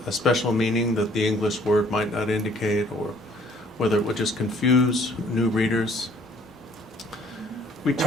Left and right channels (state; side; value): normal; both; correlation 0.59